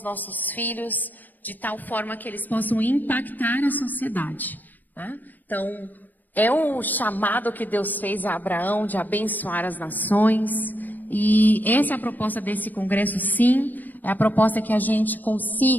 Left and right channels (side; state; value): right; late; 0.087 ms